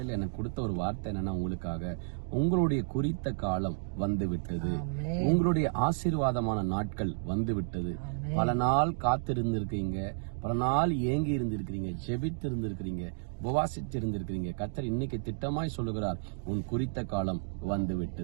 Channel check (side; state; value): left; silent; digital silence